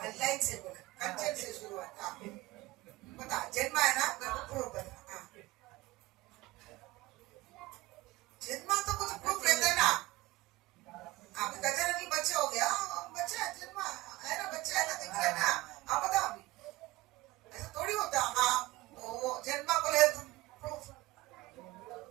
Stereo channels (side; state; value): left; quieter; 19.3 dB